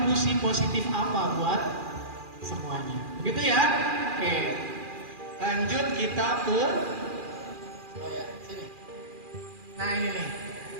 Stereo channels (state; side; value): late; left; 2.4 ms